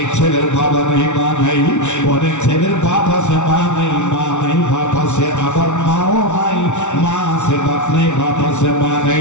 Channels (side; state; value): right; late; 0.83 ms